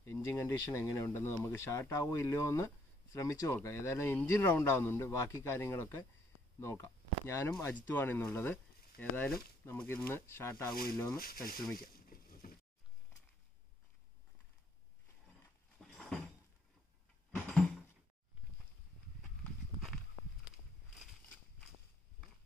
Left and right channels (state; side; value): normal; both; correlation 0.68